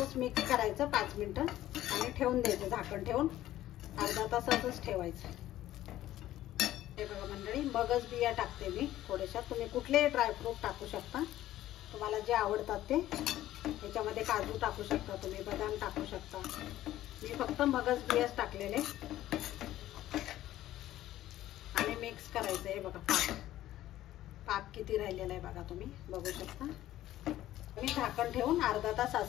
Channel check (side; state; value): right; quieter; 14.0 dB